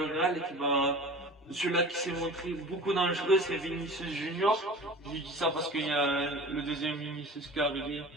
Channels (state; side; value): normal; both; correlation 0.38